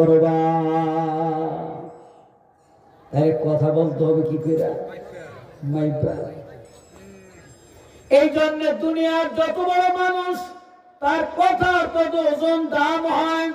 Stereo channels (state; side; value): identical; both; correlation 1.00